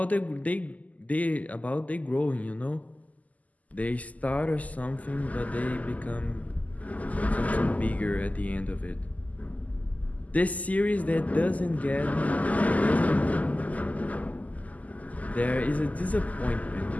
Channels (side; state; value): right; late; 0.075 ms